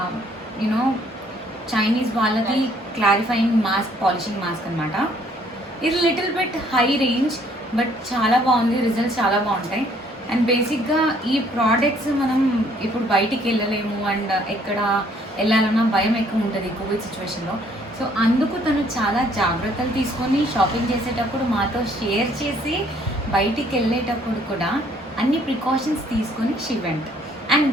చైనీస్ వాళ్ళది క్లారిఫైయింగ్ మాస్క్, పాలిషింగ్ మాస్క్ అనమాట. ఇది little bit high range, but చాలా బాగుంది, రిజల్ట్స్ చాలా బాగుంటాయి. అండ్ బేసిక్గా ఈ ప్రోడక్ట్స్ మనం ఇప్పుడు బయటికి వెళ్ళలేము అండ్ ఎక్కడ వెళ్ళాలన్నా భయం ఎక్కువ ఉంటుంది కోవిడ్ సిచ్యువేషన్లో. సో అందుకు తను చాలా జాగ్రత్తలు తీసుకొని షాపింగ్ చేసేటప్పుడు మాతో షేర్ చేసి, బయటికి వెళ్ళేటప్పుడు కూడా అన్ని ప్రికాషన్స్ తీసుకొని షీ వెంట్. అండ్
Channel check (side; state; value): both; normal; correlation 0.63